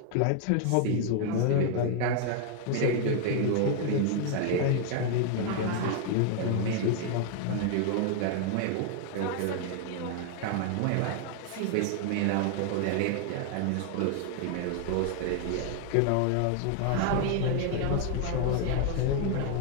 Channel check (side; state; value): both; different; correlation 0.00